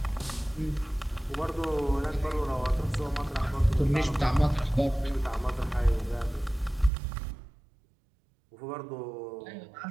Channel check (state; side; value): drops out; left; at 6.9 s